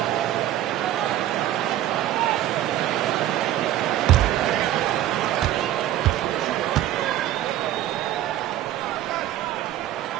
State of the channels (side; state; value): left; quieter; 13.1 dB